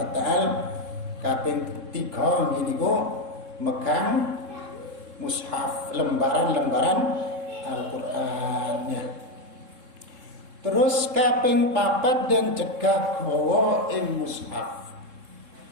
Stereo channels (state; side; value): late; left; 3.7 ms